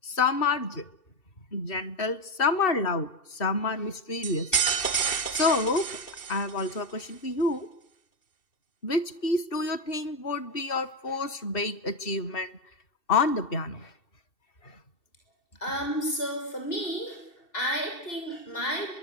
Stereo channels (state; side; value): late; right; 2.7 ms